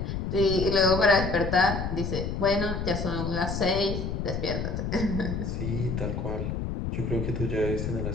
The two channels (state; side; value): noise; left; rumble, 3 dB below the sound